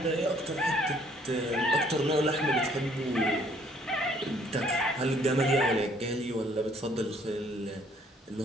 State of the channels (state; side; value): normal; both; correlation 0.62